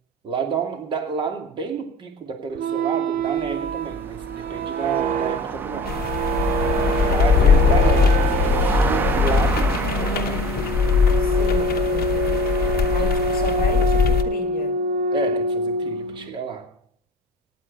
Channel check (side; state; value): both; normal; correlation 0.40